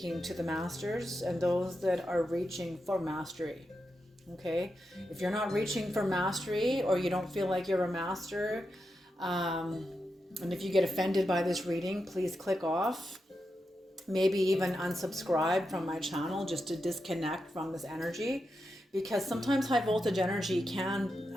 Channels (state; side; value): normal; both; correlation 0.87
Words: to the masters and those that are reaching for mastery. Okay, if you're not reaching for mastery or you don't feel like you're a master, and if you get offended by this reading, please click off. Maybe even unsubscribe from my channel just to disconnect from this energy, because sometimes high voltage energy